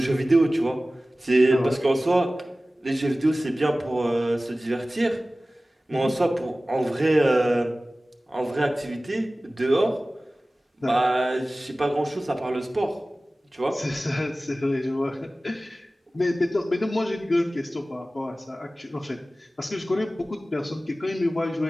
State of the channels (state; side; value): normal; both; correlation 0.97